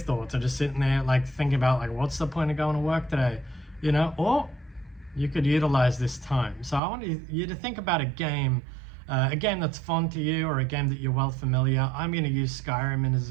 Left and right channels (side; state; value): left; drops out; at 6.8 s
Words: thoughts or just sitting there thinking about what's the point of going to work today, or you could utilize this time. So I want you to think about a game that's fun to you, or a game that you're well familiar. I'm going to use